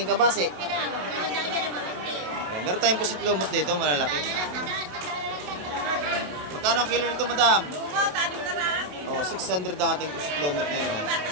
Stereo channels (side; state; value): left; late; 27 ms